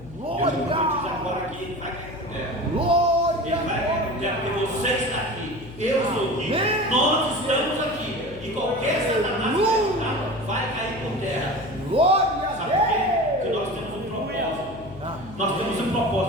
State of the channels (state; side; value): noise; left; hum, 17 dB below the sound